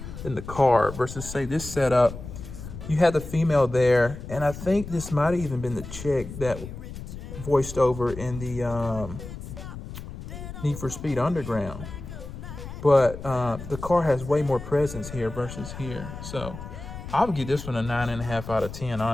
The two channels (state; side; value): noise; left; rumble, 11 dB below the sound